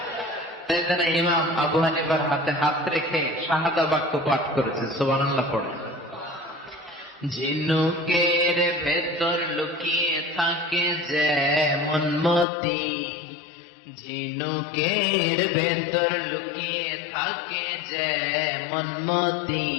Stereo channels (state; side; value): drops out; right; at 12.5 s